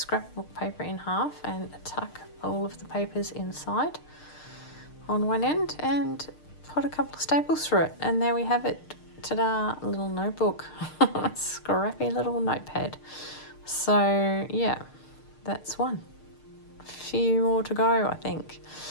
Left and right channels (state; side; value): late; right; 6.6 ms